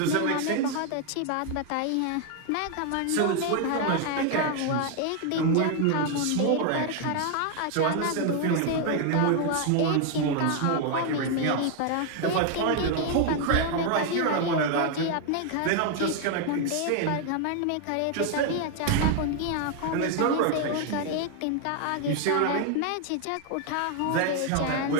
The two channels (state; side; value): different; both; correlation 0.00